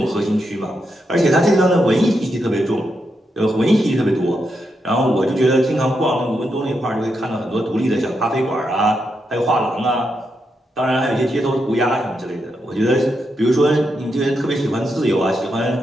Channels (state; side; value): normal; both; correlation 0.83